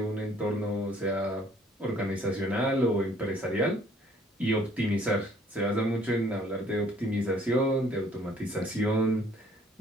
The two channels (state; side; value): normal; both; correlation 0.59